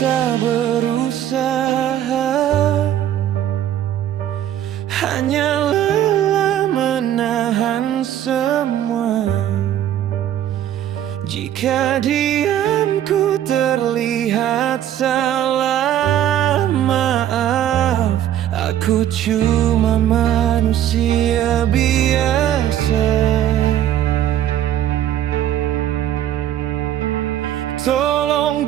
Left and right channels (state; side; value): quieter; left; 11.3 dB